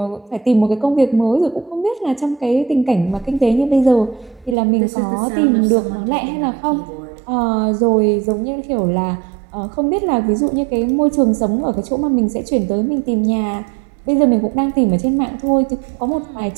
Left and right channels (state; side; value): drops out; left; at 4.5 s